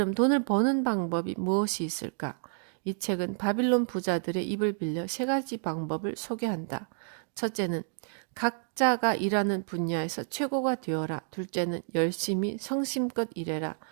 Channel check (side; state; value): left; silent; digital silence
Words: 돈을 버는 방법이 무엇이 있을까? 이 책은 바빌론 부자들의 입을 빌려 세 가지 방법을 소개한다. 첫째는 각자가 일하는 분야에서 최고가 되어라. 둘째는 열심히 성심껏 일해라.